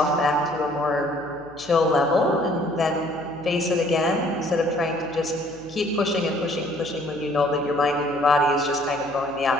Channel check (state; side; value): noise; left; hum, 24 dB below the sound